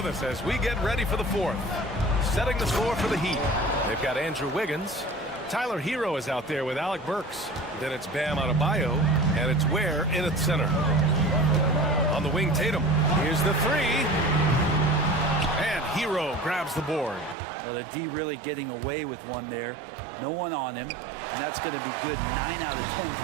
us as we get ready for the fourth. Setting the floor for the Heat. They've got Andrew Wiggins. Tyler Hero is out there with Alec Burks. Then it's Bam Adebayo, and it's Ware in at center. On the wing, Tatum. Here's the three. And Hero grabs the board. Well, the D really getting away with one there. No one on him, and that's going to be good 9 out of 10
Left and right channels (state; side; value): drops out; left; at 17.4 s